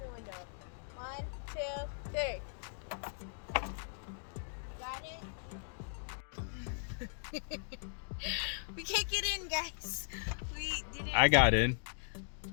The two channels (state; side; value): silent; right; digital silence